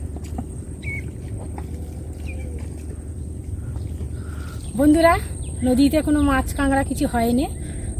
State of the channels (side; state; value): both; identical; correlation 1.00